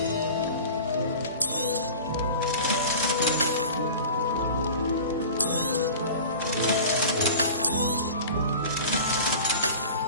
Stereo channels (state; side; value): inverted; both; correlation -0.38